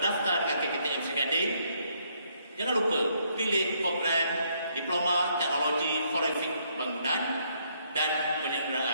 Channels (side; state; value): both; inverted; correlation -0.71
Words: dengan KKTM Seri Gading. Jangan lupa pilih program Diploma Teknologi Forensik Bangunan dan